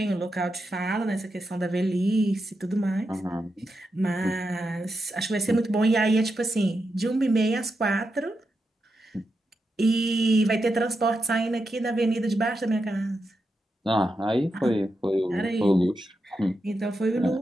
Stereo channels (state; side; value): normal; both; correlation 0.86